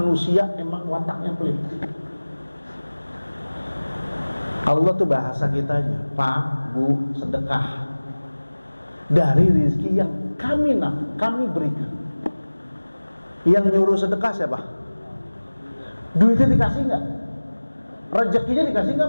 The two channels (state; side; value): inverted; both; correlation -1.00